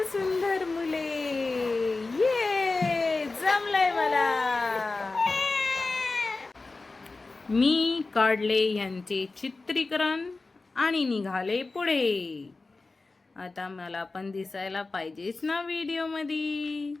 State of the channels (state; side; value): quieter; right; 3.6 dB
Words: सुंदर मुले। ये जमलंय मला। मी काढले यांचे चित्रीकरण आणि निघाले पुढे। आता मला पण दिसायला पाहिजेच ना व्हिडिओमध्ये।